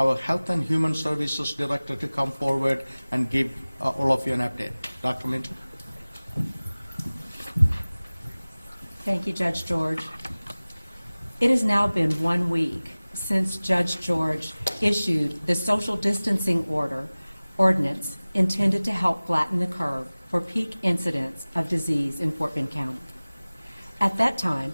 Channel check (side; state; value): both; inverted; correlation -0.99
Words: Health and Human Services Director, to come forward and give all of you an update. Dr. Minter. Thank you, Judge George. It has now been 1 week since Judge George issued the social distancing ordinance intended to help flatten the curve for peak incidents of disease in Fort Bend County. At that time,